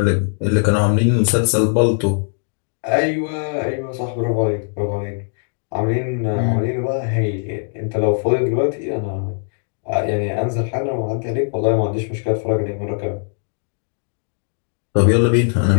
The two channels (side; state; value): right; silent; 59 dB below the other